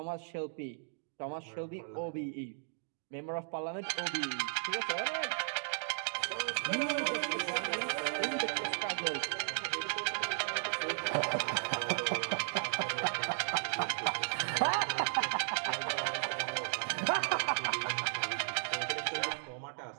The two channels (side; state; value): left; silent; digital silence